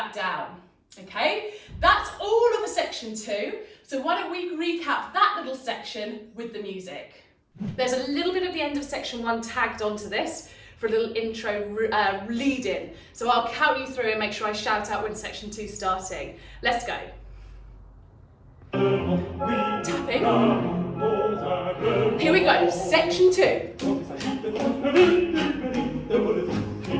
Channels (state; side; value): identical; both; correlation 1.00